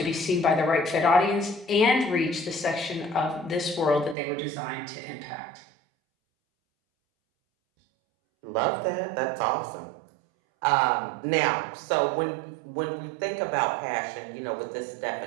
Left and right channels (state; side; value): drops out; left; at 4.2 s